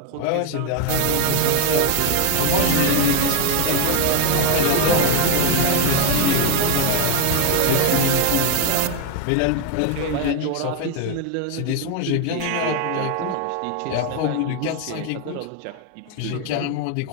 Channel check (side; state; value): both; different; correlation 0.01